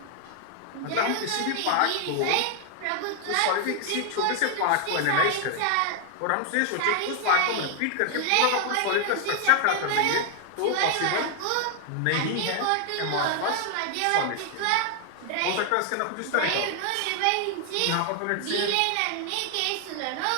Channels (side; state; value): both; different; correlation 0.00